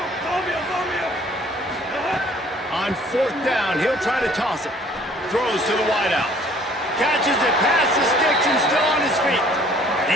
On 4th down, he'll try to toss it. Throws to the wideout. Catches it past the sticks and still on his feet.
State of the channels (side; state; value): both; normal; correlation 0.56